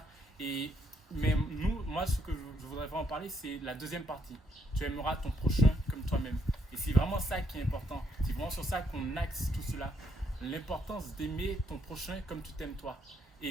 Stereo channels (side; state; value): both; normal; correlation 0.74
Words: Mais moi, ce que je voudrais vraiment parler, c'est la deuxième partie. Tu aimeras ton prochain comme toi-même. Et c'est vraiment ça qui est important. C'est vraiment sur ça qu'on axe tout cela. L'importance d'aimer ton prochain comme tu t'aimes toi.